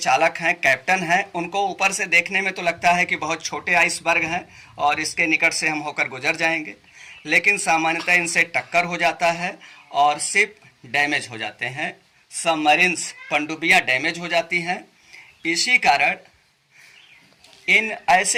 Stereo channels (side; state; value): both; identical; correlation 1.00